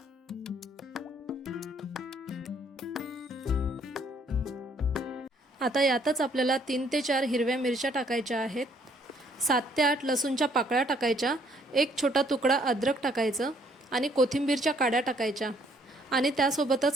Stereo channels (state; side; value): normal; both; correlation 0.65